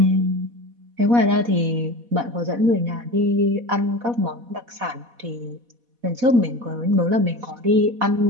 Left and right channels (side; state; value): left; late; 4.1 ms